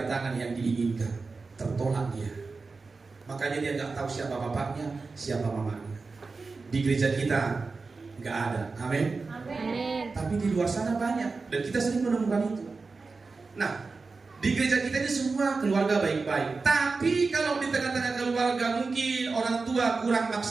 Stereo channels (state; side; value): quieter; left; 4.2 dB